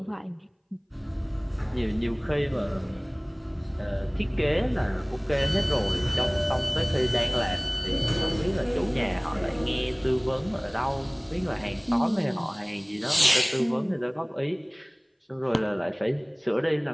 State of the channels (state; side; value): identical; both; correlation 1.00